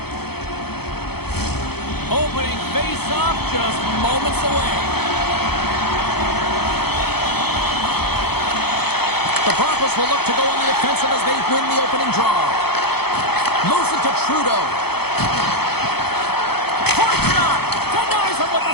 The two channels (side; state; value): right; late; 0.97 ms